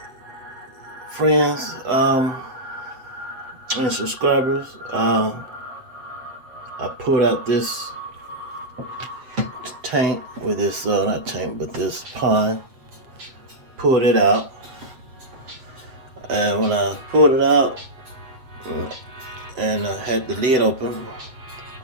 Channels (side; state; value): left; late; 7.9 ms